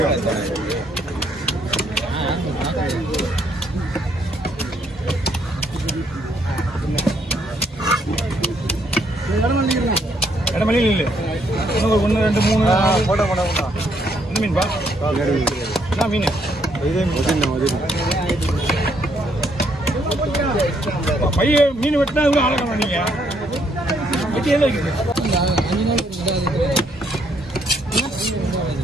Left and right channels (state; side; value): normal; both; correlation 0.71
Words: இடமலையில் இல்லை இன்னும் ஒரு 1 2 3 போட்டோ என்ன மீன்பா என்ன மீன் பைய மீன் வெட்டினா இவ்வளோ ஆழக்கணும் நீங்கள் வெட்டி எல்லாம் இருக்குது